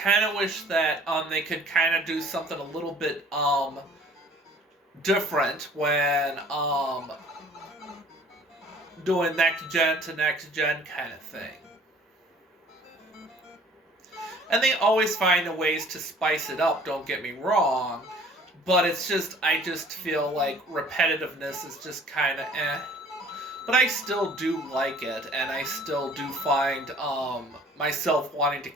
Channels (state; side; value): normal; both; correlation 0.52